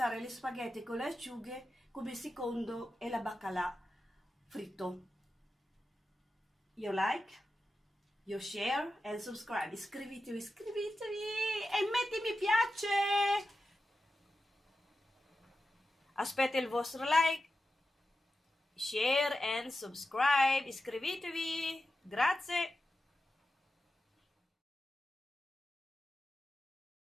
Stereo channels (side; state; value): both; normal; correlation 0.92